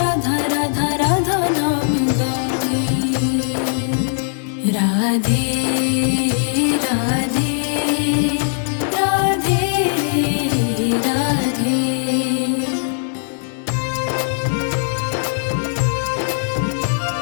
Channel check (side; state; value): right; silent; digital silence